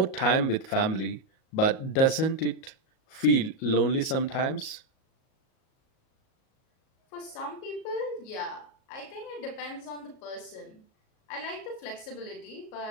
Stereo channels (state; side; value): late; right; 37 ms